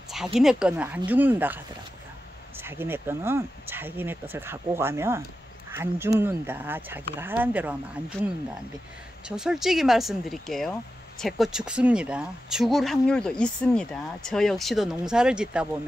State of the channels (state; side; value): normal; both; correlation 0.91